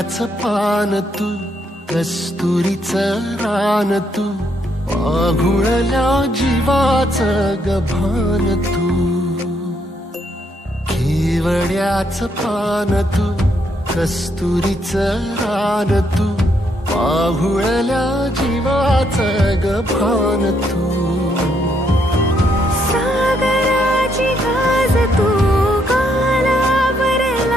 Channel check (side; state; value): both; normal; correlation 0.74